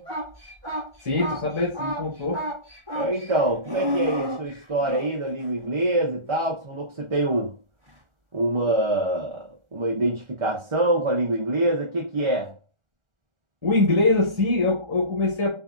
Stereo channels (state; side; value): late; left; 1.4 ms